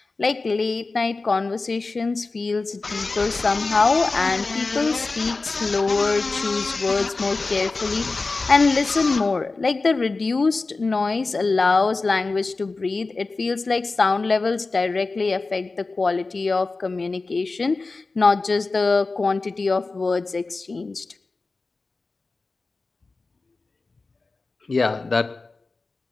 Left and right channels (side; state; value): right; quieter; 3.7 dB